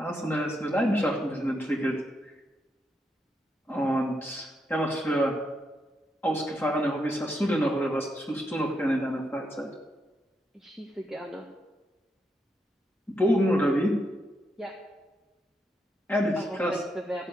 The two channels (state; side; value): normal; both; correlation 0.80